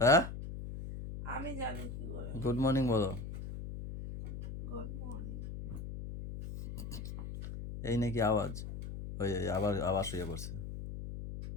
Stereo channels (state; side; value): noise; left; hum, 8 dB below the sound